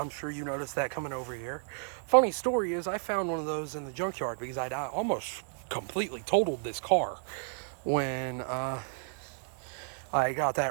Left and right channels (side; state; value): left; silent; digital silence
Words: sure you noticed that coming over here. Funny story is, I found one of those in the junkyard because I'd almost completely totaled this car when I got